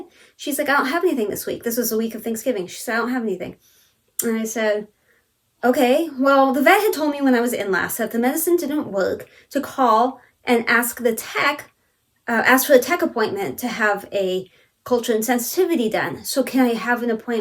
She's like, I don't have anything this week. This was the week of Thanksgiving. She said, I don't have anything. And I said, okay, well, the vet had told me when I was in last that if the medicine didn't work, to call and ask the tech, ask for a tech appointment to have a culture and sensitivity done. So can I have an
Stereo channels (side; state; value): both; identical; correlation 1.00